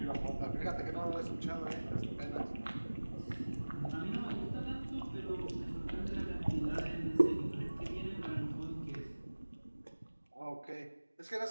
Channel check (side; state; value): both; inverted; correlation -1.00